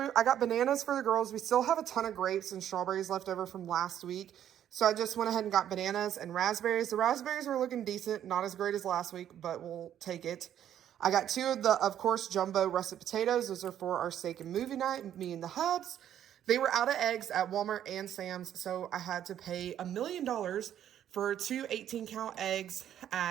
I got bananas for the girls. We still have a ton of grapes and strawberries left over from last week. So I just went ahead and got bananas and raspberries. The raspberries were looking decent, not as great as last week, but we'll take it. I got 2 of the, of course, jumbo russet potatoes. Those are for our steak and movie night, me and the hubs. They were out of eggs at Walmart and Sam's, so I had to pay $1 million for 2 18-count eggs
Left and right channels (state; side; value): quieter; left; 10.5 dB